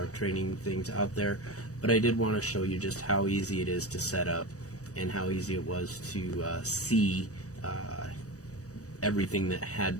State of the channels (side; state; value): right; late; 0.66 ms